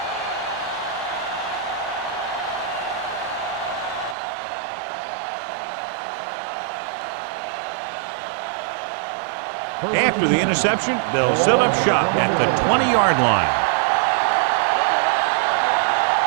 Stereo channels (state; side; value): drops out; left; at 4.2 s